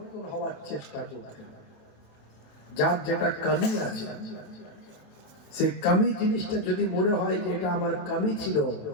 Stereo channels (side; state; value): right; late; 27 ms